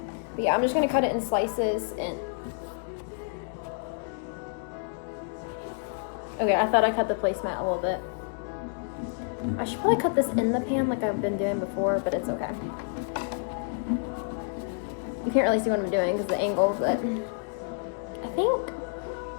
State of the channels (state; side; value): silent; right; digital silence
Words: yeah, I'm just gonna cut it in slices. And okay, I thought I cut the placemat a little bit. I should probably cut this in the pan like I've been doing before, but it's okay. You can't really see what I'm doing because of the angle, but I think